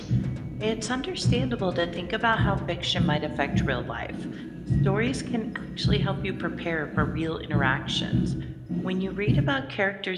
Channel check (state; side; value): identical; both; correlation 1.00